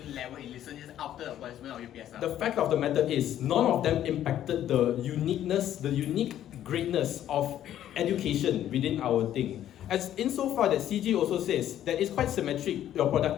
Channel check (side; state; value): right; quieter; 11.5 dB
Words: level in listeners after the abolishment of UPSR? The fact of the matter is, none of them impacted the unique greatness of education within our thing. As insofar that CG also says that it's quite symmetric, your